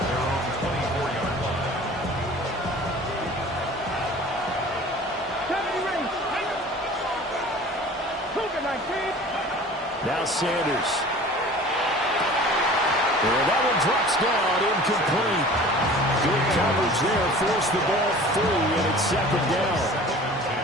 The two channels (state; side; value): normal; both; correlation 0.44